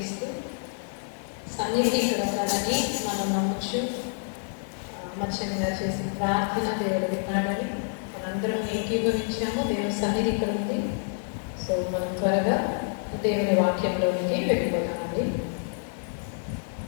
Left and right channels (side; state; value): right; silent; digital silence